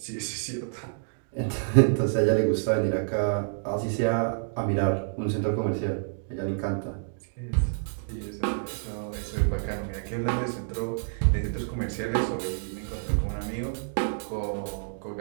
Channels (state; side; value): silent; left; digital silence